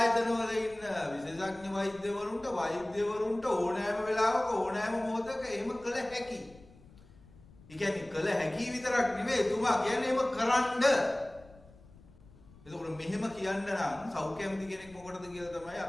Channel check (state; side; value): noise; left; rumble, 23 dB below the sound